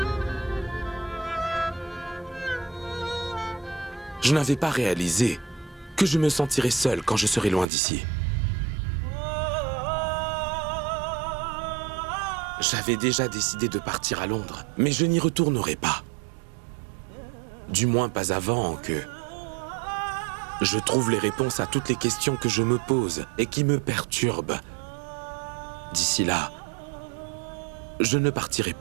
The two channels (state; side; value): drops out; left; at 7.7 s